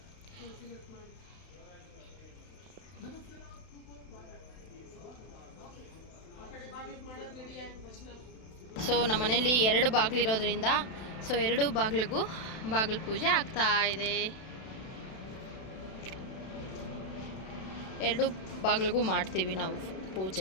ಸೊ ನಮ್ಮ ಮನೆಯಲ್ಲಿ 2 ಬಾಗಿಲಿರೋದ್ರಿಂದ ಸೊ 2 ಬಾಗಿಲಿಗೂ ಬಾಗಿಲು ಪೂಜೆ ಆಗ್ತಾ ಇದೆ. 2 ಬಾಗಿಲಿಗೂ ಮಾಡ್ತೀವಿ ನಾವು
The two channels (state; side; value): late; right; 32 ms